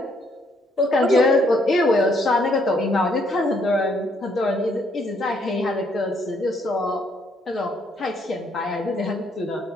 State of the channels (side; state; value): both; normal; correlation 0.69